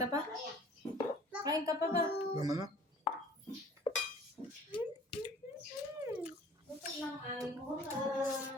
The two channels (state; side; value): normal; both; correlation 0.50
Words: pa? Kain ka pa ba? Naman na. Ito lang ay